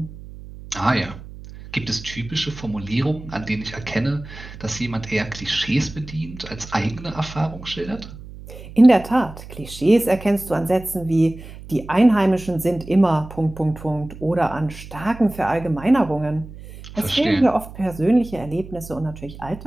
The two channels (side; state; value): right; noise; hum, 15 dB below the sound